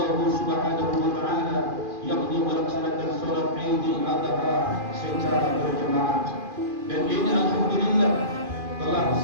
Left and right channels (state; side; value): late; left; 2.4 ms